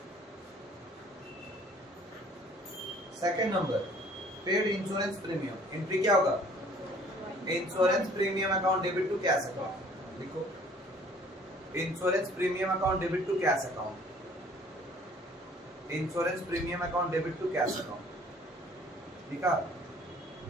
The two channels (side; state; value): both; normal; correlation 0.55